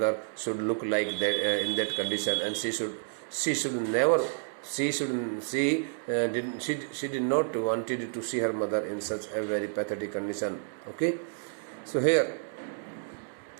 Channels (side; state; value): left; silent; 58 dB below the other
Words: should look like that in that condition, and she did not wanted to see her mother in such a very pathetic condition. Okay, so here